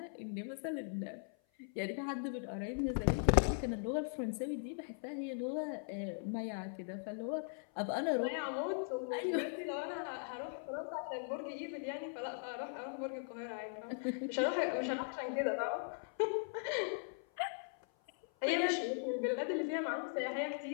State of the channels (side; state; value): right; silent; 52 dB below the other